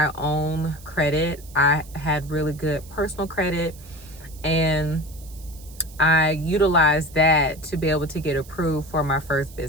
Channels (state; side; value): noise; right; hiss, 21 dB below the sound